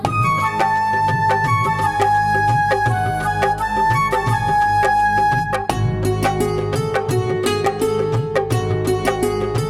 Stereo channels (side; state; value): both; identical; correlation 1.00